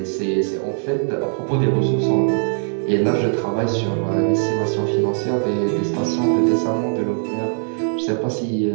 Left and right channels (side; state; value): left; silent; 65 dB below the other